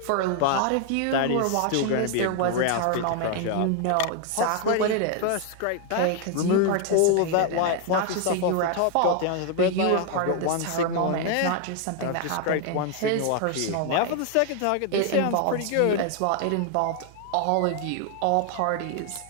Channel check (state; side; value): different; both; correlation 0.00